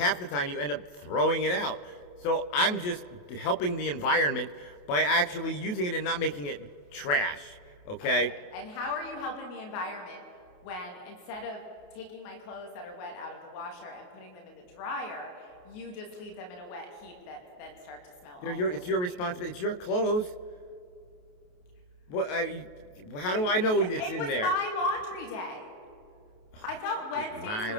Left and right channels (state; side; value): late; right; 28 ms